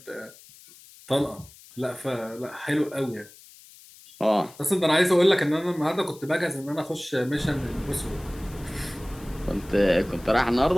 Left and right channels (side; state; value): left; noise; hiss, 22 dB below the sound